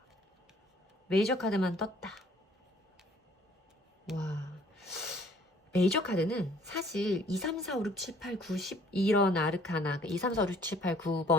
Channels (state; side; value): normal; both; correlation 0.58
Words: 메이저 카드만 떴다. 와, 메이저 카드는 사실 2, 3, 4, 5, 6, 7, 8, 9, 10 이런 아르카나, 2, 3, 4, 5, 6, 7, 8,